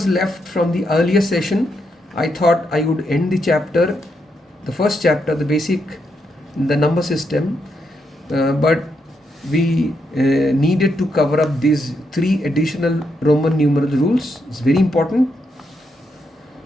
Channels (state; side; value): normal; both; correlation 0.80